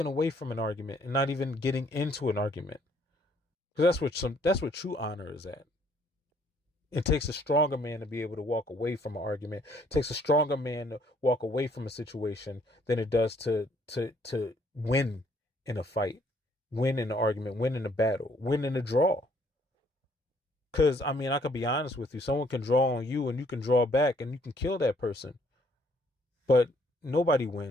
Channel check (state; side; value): normal; both; correlation 0.65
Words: away from an argument and not even getting into an argument, because that's what true honor is at. It takes a stronger man to be able to walk away from an argument. It takes a stronger man to walk away from a situation than it does to win in a fight, win in an argument, win in a battle, win in a draw. Because, I mean, I could be honest with you. Someone can draw on you and you can draw back and you can kill that person. But nobody